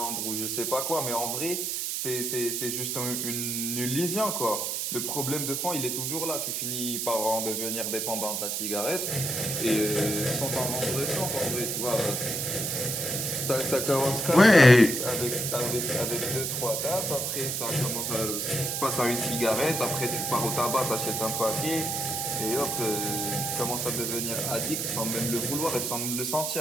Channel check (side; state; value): right; noise; hiss, 1 dB below the sound